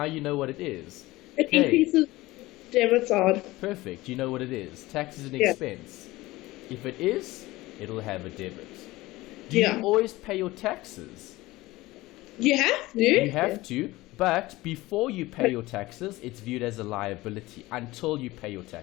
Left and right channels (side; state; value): right; quieter; 19.1 dB